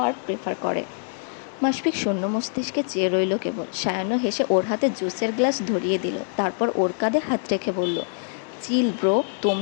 প্রেফার করে। মাসপিক শূন্য মস্তিষ্কে চেয়ে রইল কেবল। সায়ান্ন হেসে ওর হাতে জুসের গ্লাস ধরিয়ে দিল। তারপর ওর কাঁধে হাত রেখে বলল, চিল ব্রো,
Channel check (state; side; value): silent; right; digital silence